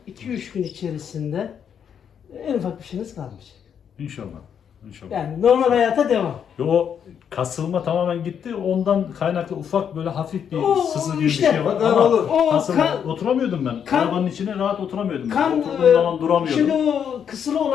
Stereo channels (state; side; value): quieter; right; 8.0 dB